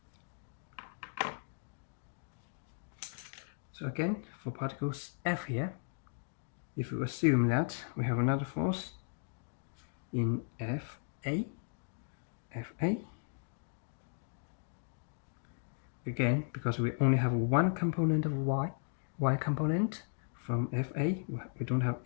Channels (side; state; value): right; silent; digital silence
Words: So again, for particles F here, if we assume that we have another force in Fa, again, because we only have one component of y component from Fa, we don't have